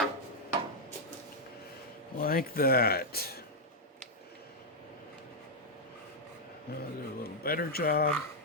Like that. Now I'll do a little better job.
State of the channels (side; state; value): both; normal; correlation -0.02